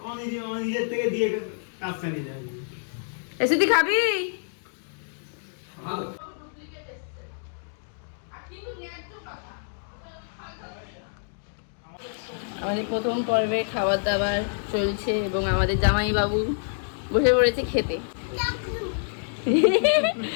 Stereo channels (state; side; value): silent; right; digital silence